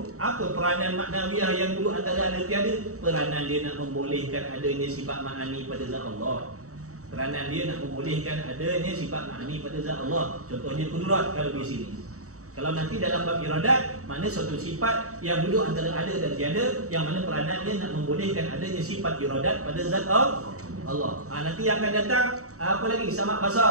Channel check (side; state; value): left; late; 0.65 ms